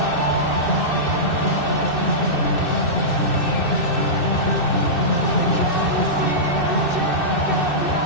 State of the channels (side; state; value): right; late; 2.6 ms